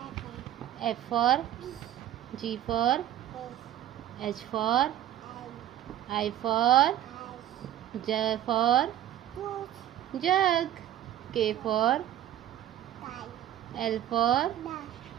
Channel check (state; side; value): quieter; left; 12.0 dB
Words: F for G for H for I for J for jug, K for L for